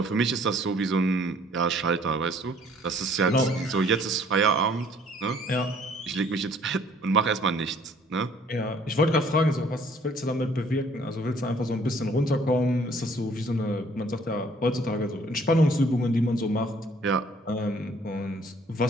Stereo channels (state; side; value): normal; both; correlation 0.59